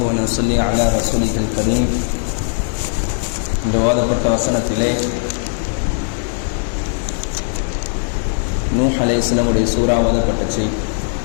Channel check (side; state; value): right; silent; digital silence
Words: ونصلي على رسوله الكريم. இந்த ஓதப்பட்ட வசனத்திலே நூஹ் அலைஹிஸ்ஸலாமுடைய சூரா ஓதப்பட்டுச்சு.